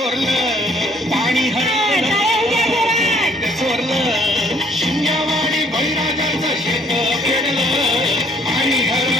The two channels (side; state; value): both; normal; correlation 0.62